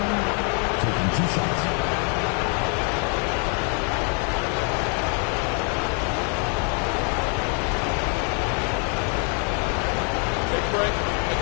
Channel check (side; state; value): right; quieter; 39.2 dB